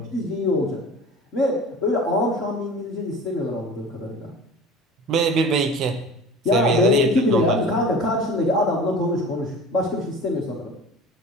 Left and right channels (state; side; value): normal; both; correlation 0.39